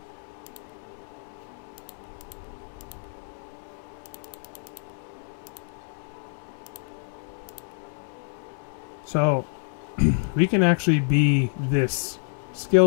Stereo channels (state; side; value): silent; right; 60 dB below the other